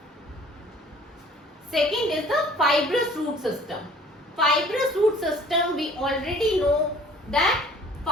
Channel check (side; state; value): both; normal; correlation 0.52